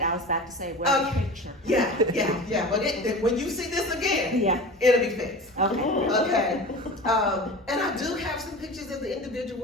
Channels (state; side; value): normal; both; correlation 0.34